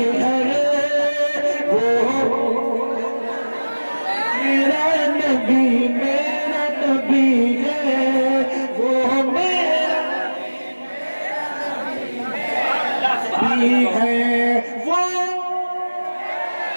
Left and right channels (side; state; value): both; inverted; correlation -1.00